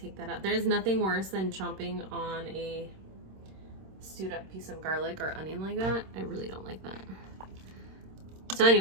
that out. There's nothing worse than chomping on a stewed up piece of garlic or onion like that. I really don't like that. So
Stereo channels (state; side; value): late; left; 26 ms